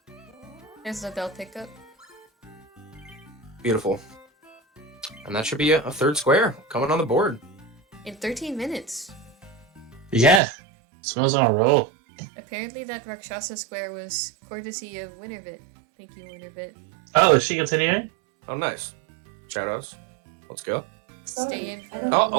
There's the bell pickup. Beautiful. And that should be a 3rd square coming on the board. In 13 minutes. Yeah, smells on a roll. Apparently that Rakshasa square was courtesy of Winterbit. Thank you, Winterbit. Oh, is she continuing? Oh, nice. Shoutouts. Let's go. Stay in for Oh,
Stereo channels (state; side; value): drops out; left; at 10.4 s